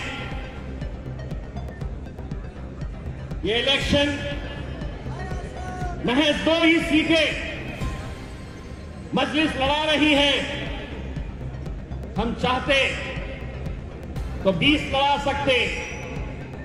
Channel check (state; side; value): identical; both; correlation 1.00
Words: ये इलेक्शन महज 2 ही सीटें मजलिस लड़ा रही है। हम चाहते तो 20 लड़ा सकते,